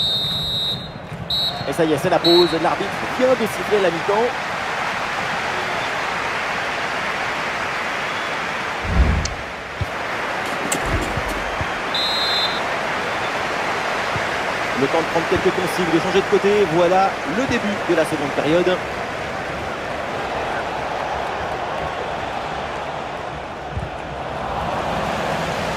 Et ça y est, c'est la pause. L'arbitre vient de siffler la mi-temps. Le temps de prendre quelques consignes, de changer de côté. Voilà le début de la seconde période.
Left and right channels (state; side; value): identical; both; correlation 1.00